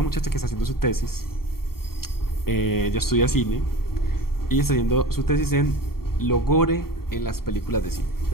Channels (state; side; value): late; right; 0.93 ms